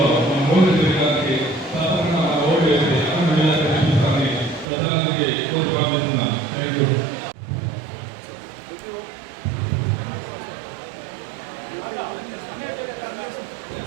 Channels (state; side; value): drops out; left; at 4.7 s